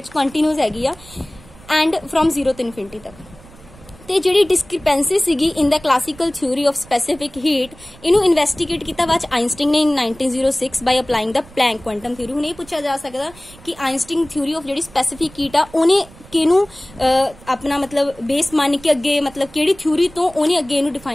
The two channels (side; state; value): right; noise; rumble, 22 dB below the sound